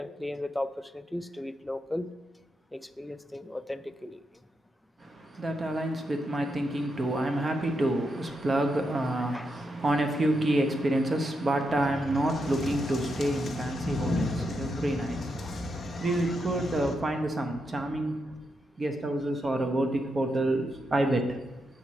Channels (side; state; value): both; normal; correlation 0.84